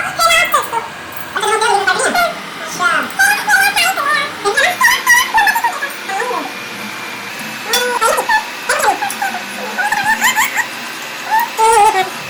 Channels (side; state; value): both; identical; correlation 1.00